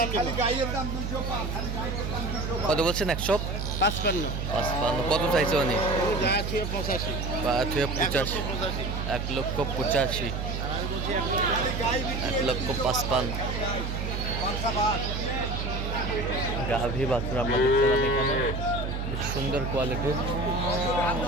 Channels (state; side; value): noise; right; hum, 3 dB below the sound